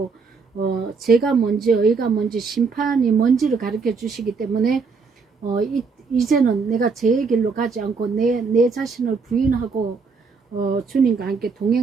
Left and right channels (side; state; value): left; quieter; 4.8 dB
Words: 죄가 뭔지 의가 뭔지 심판이 뭔지를 가르쳐 주시기 때문에 이제는 내가 죄의 길로 가지 않고 내 자신을 부인하고 주님과 함께